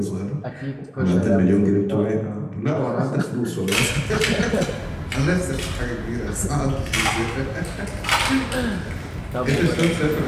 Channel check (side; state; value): both; identical; correlation 1.00